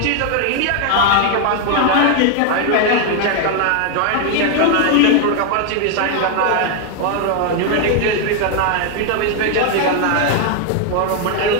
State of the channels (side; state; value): both; different; correlation 0.00